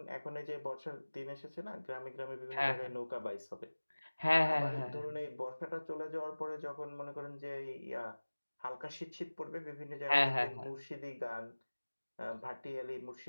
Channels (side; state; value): both; inverted; correlation -1.00